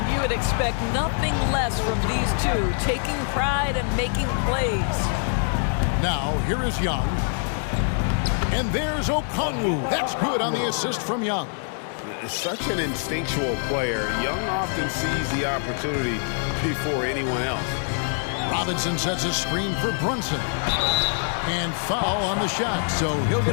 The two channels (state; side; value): silent; right; 62 dB below the other